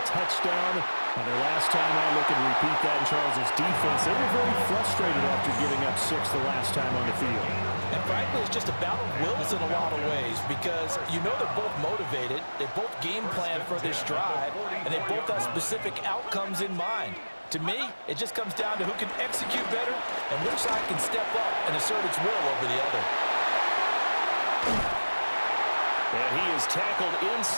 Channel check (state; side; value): inverted; both; correlation -1.00